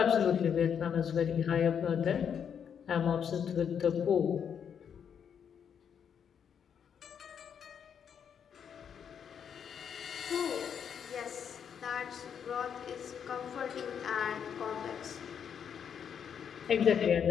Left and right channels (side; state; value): right; quieter; 7.8 dB